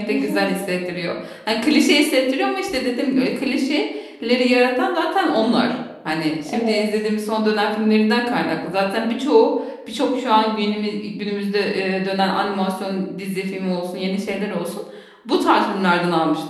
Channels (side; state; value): both; identical; correlation 1.00